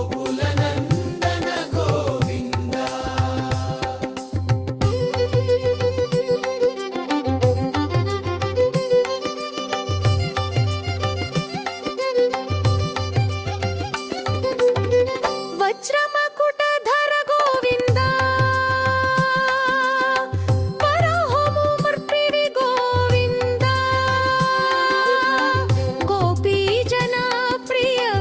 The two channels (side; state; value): both; identical; correlation 1.00